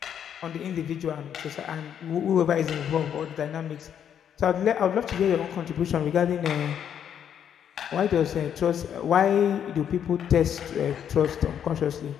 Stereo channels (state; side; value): quieter; right; 8.9 dB